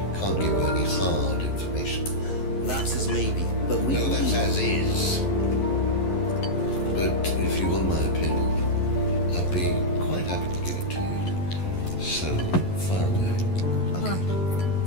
can't give you any hard information. That's as maybe, but we No, that's as is. But if you want my opinion, I'd be quite happy to give it to you. So far away. Okay.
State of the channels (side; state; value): right; late; 11 ms